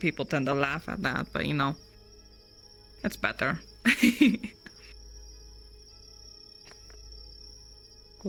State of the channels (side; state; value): both; identical; correlation 1.00